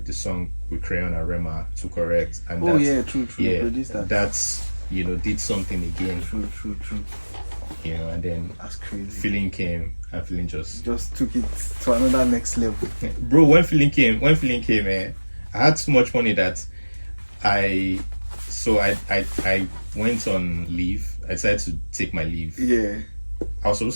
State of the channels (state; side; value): inverted; both; correlation -1.00